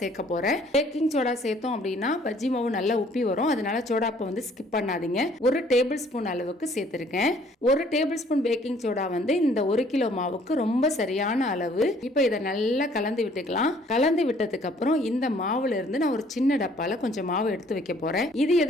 போறேன். பேக்கிங் சோடா சேர்த்தோம் அப்படின்னா பஜ்ஜி மாவு நல்லா உப்பி வரும். அதனால சோடா உப்பை ஸ்கிப் பண்ணாதீங்க. 1 டேபிள் ஸ்பூன் அளவுக்கு சேர்த்திருக்கேன். 1 டேபிள் ஸ்பூன் பேக்கிங் சோடா இந்த 1 கிலோ மாவுக்கு ரொம்ப சரியான அளவு. இப்போ இதை நல்லா கலந்து விட்டுக்கலாம். கலந்து விட்டதுக்கு அப்புறம் இந்த மாவுல இருந்து நான் ஒரு சின்ன டப்பால கொஞ்சம் மாவு எடுத்து வைக்க போறேன். இது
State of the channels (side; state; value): both; normal; correlation 0.59